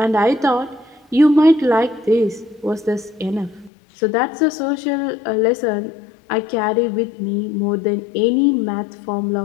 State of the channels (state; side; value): drops out; right; at 3.7 s